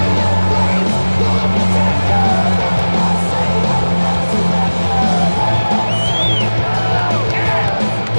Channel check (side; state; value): both; inverted; correlation -1.00